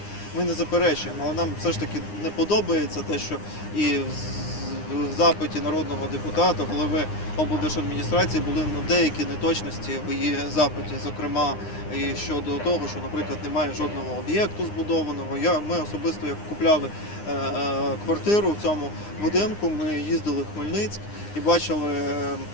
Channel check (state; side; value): late; right; 9.8 ms